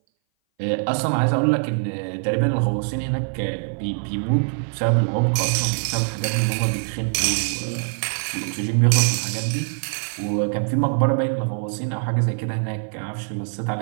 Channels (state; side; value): silent; left; 59 dB below the other